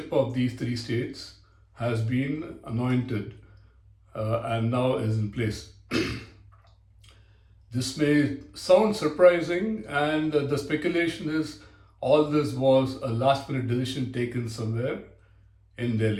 of these three states has been anointed and now is in place. This may sound surprising, and the speculation is all this was a last minute decision taken somewhere in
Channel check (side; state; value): both; identical; correlation 1.00